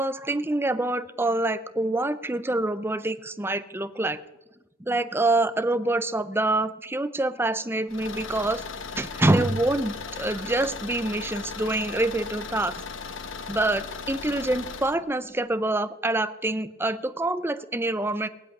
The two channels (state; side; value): normal; both; correlation 0.66